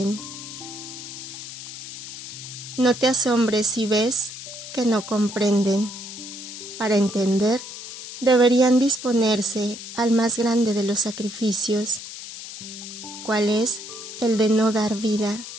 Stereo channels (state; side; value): noise; left; hiss, 11 dB below the sound